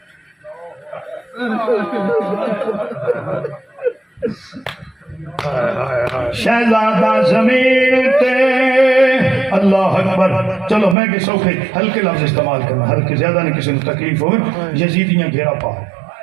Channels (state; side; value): drops out; left; at 11.0 s